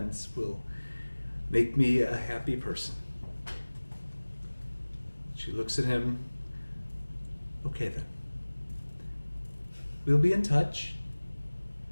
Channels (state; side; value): inverted; both; correlation -1.00